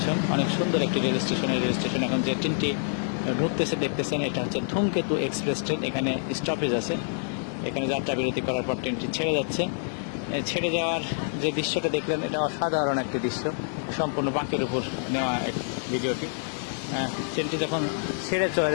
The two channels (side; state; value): right; silent; digital silence